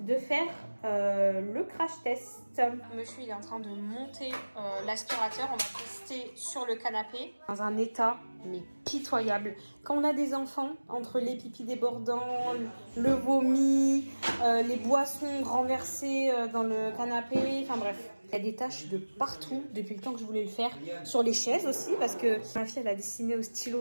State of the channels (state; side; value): inverted; both; correlation -1.00